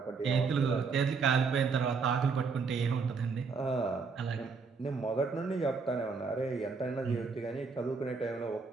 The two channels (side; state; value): left; quieter; 4.9 dB